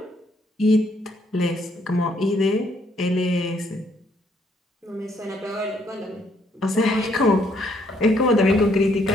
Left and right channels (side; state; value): both; normal; correlation 0.69